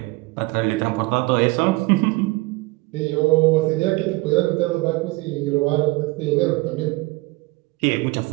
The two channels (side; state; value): left; quieter; 22.8 dB